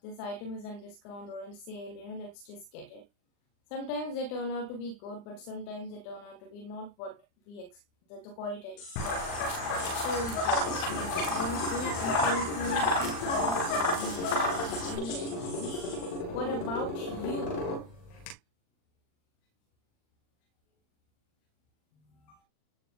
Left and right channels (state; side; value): late; right; 39 ms